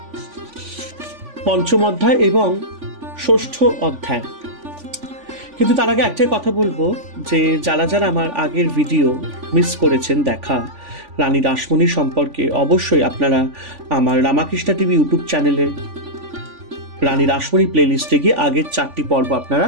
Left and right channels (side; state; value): left; late; 3.5 ms